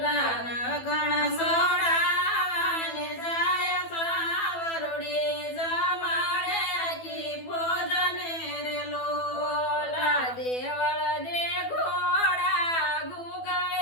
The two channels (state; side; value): late; right; 12 ms